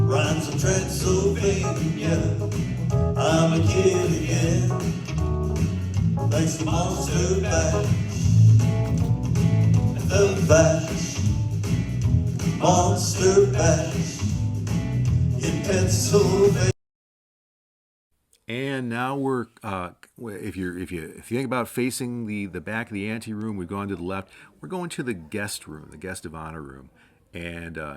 of Transylvania. I'm a kid again, thanks to Monster Bash. And the bash, Monster Bash, in Pennsylvania. And now we're if you think about facing the back of the ante room, we've gone to the left. We're going to the guest room, the guest of honor room, and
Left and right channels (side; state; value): both; identical; correlation 1.00